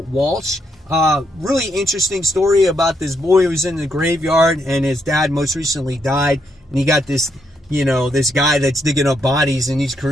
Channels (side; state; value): both; normal; correlation 0.77